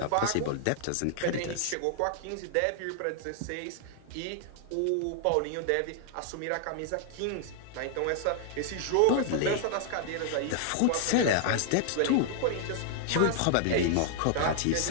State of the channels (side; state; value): both; different; correlation 0.00